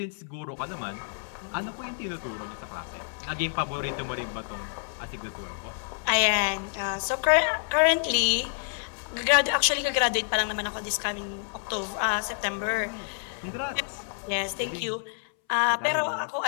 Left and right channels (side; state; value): right; silent; 59 dB below the other